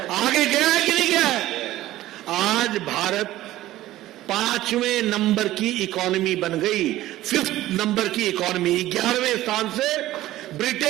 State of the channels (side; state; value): left; quieter; 15.3 dB